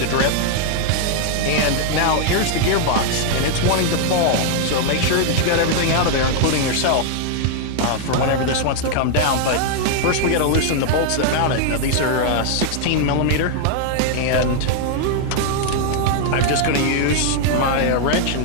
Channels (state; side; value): different; both; correlation 0.00